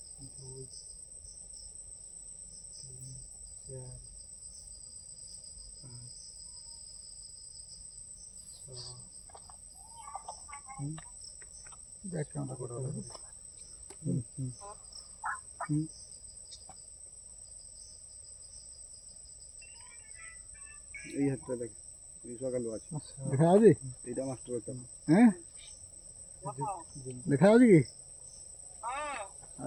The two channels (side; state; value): both; identical; correlation 1.00